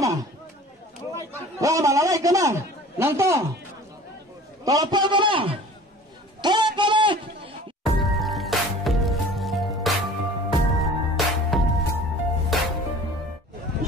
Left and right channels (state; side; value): normal; both; correlation 0.45